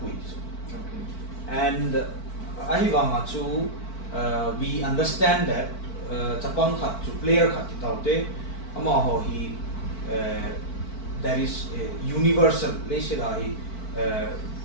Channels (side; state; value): right; late; 4.5 ms